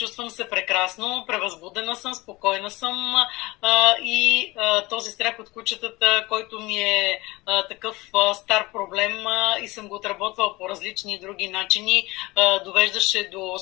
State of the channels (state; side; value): quieter; right; 21.7 dB